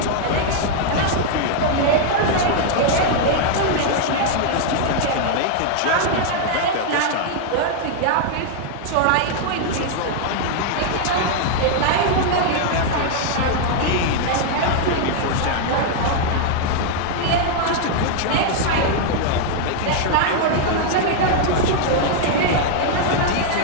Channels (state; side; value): different; both; correlation 0.00